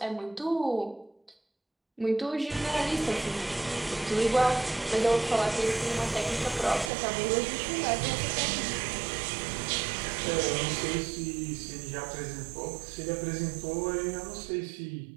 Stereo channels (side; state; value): left; drops out; at 6.9 s